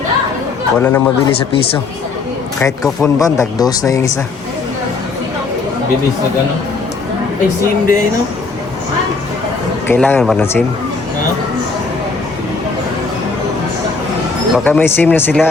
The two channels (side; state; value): right; quieter; 4.3 dB